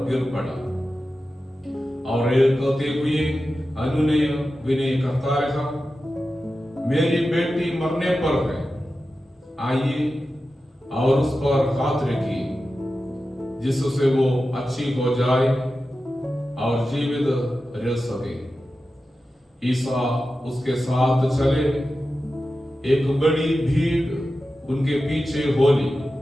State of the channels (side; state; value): both; normal; correlation 0.93